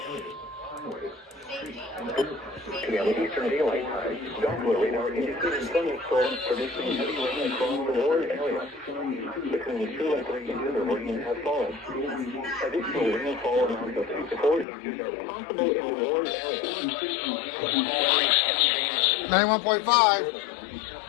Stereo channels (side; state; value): right; drops out; at 14.7 s